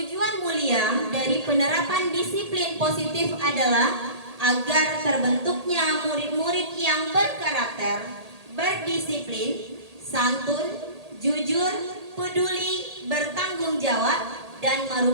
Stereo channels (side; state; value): left; late; 1.8 ms